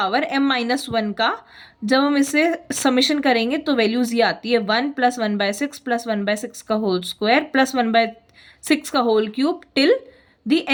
m माइनस 1 का जब हम इसे समेशन करेंगे तो वैल्यूज ये आती है 1 प्लस 1/6 प्लस 1/6 का होल स्क्वायर प्लस 1/6 का whole cube till the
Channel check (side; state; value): both; identical; correlation 1.00